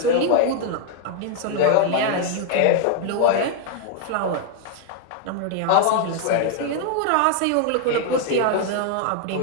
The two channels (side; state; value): both; different; correlation 0.00